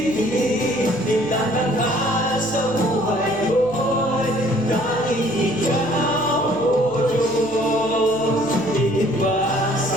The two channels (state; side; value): noise; left; hum, 19 dB below the sound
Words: itatanghal sa buhay ko'y tanging ikaw, O Diyos. Iiba